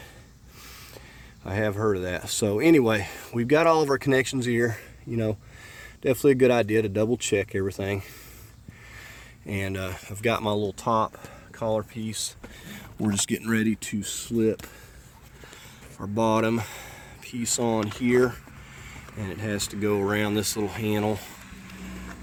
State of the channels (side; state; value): both; identical; correlation 1.00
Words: I have heard of that. So anyway, we've got all of our connections here. You know, definitely a good idea to double check everything. And I've got my little top collar piece. We're just getting ready to slip our bottom piece on here, and it has to go around this little handle,